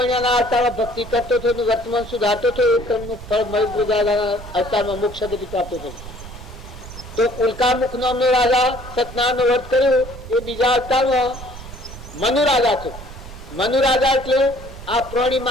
અવતારમાં ભક્તિ કરતો હતો, વર્તમાન સુધારતો હતો, એ કર્મનું ફળ મયુદ્ધ રાજાના અવતારમાં મોક્ષ ગતિ પ્રાપ્ત થયું. તો ઉલ્કામુખ નામનો રાજા સત્યનારાયણનું વ્રત કર્યું એ બીજા અવતારમાં મનુ રાજા થયો. મનુ રાજા એટલે આ પ્રાણી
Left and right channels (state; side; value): noise; right; rumble, 14 dB below the sound